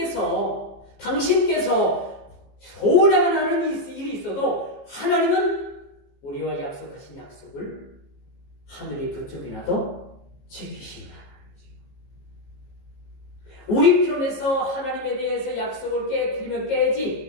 당신께서 소원해만 하는 일이 있어도 하나님은 우리와 약속하신 약속을 하늘이 두 쪽이나도 지키시는 하나님이죠. 우리 편에서 하나님에 대해서 약속을 깨뜨리면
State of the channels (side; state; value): right; late; 15 ms